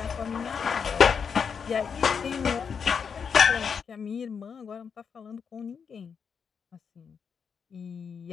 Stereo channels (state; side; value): quieter; right; 6.4 dB